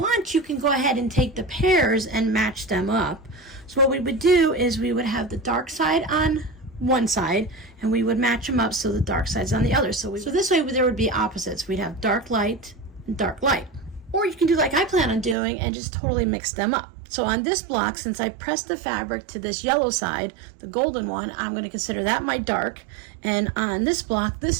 you can go ahead and take the pairs and match them up. So what we would do is we would have the dark side on one side and we would match them up so the dark side's on the other. So this way there would be opposites. We'd have dark light and dark light. Or you can do like I plan on doing and just totally mix them up. So on this block, since I pressed the fabric to this yellow side, the golden one, I'm going to consider that my dark. And on this block,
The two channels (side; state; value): left; drops out; at 15.4 s